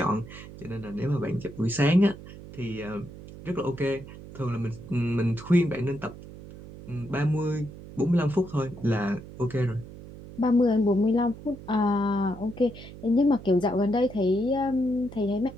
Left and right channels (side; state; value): right; noise; hum, 15 dB below the sound